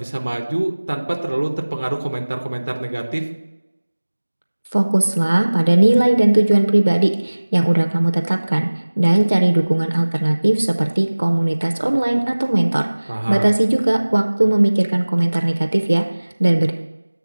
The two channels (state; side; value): inverted; both; correlation -1.00